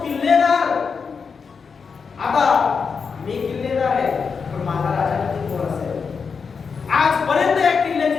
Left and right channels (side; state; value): right; quieter; 5.6 dB